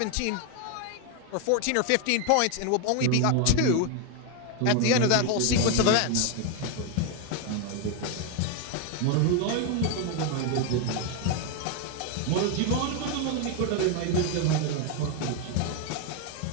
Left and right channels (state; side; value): different; both; correlation 0.01